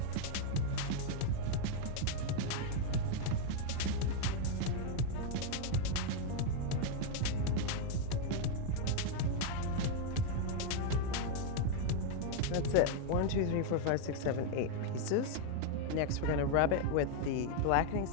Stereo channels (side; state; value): both; different; correlation 0.00